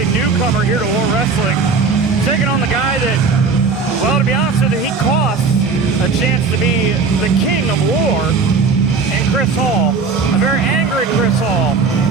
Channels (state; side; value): quieter; left; 4.8 dB